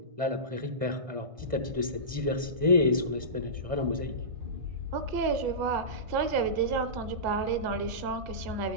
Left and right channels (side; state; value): left; late; 1.6 ms